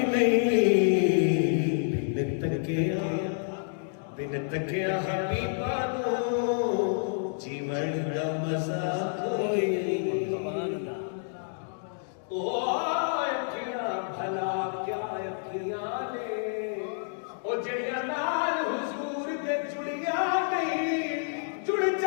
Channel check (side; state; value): right; silent; digital silence